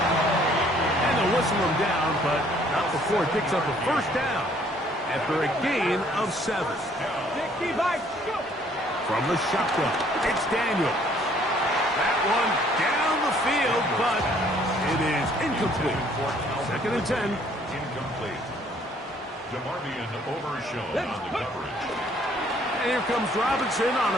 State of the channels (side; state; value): both; normal; correlation 0.61